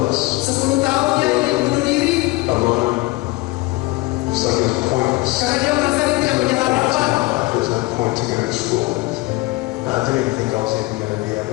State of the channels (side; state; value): right; quieter; 21.4 dB